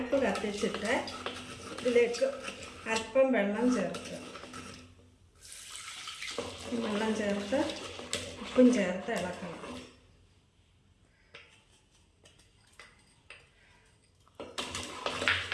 കത്തിച്ചിട്ട് ഇതിലേക്ക് അല്പം വെള്ളം ചേർക്കുക. വെള്ളം ചേർത്ത് ഉപ്പും ചേർത്ത് ഇളക്കണം.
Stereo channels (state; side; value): identical; both; correlation 1.00